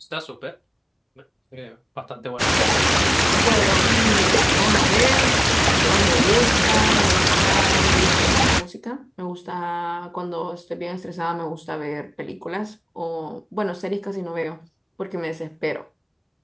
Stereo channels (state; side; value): identical; both; correlation 1.00